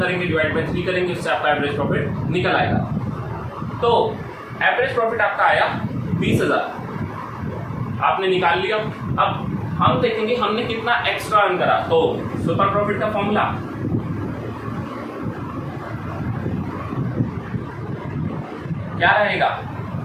डिवाइड बाय 3 करेंगे, उससे आपका एवरेज प्रॉफिट निकल आएगा। तो एवरेज प्रॉफिट आपका आया 20,000 आपने निकाल लिया। अब हम देखेंगे हमने कितना एक्स्ट्रा अर्न करा। तो सुपर प्रॉफिट का फॉर्मूला क्या रहेगा,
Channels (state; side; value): identical; both; correlation 1.00